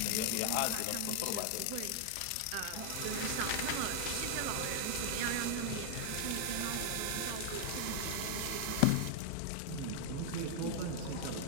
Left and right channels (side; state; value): both; different; correlation 0.00